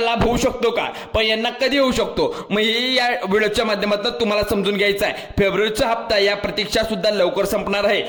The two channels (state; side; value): identical; both; correlation 1.00